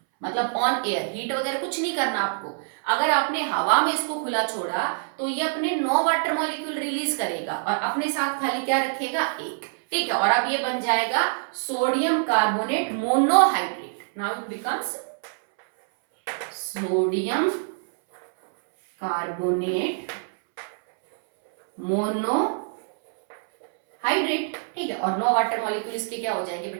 मतलब ऑन एयर, हीट वगैरह कुछ नहीं करना आपको। अगर आपने हवा में इसको खुला छोड़ा तो ये अपने 9 वाटर मॉलिक्यूल रिलीज करेगा और अपने साथ खाली क्या रखेगा, एक, ठीक है। और अब ये बन जाएगा sodium carbonate monohydrate. Now it becomes sodium carbonate monohydrate, separate, ठीक है, और 9 वाटर मॉलिक्यूल इसके क्या हो जाएंगे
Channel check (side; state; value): left; silent; 62 dB below the other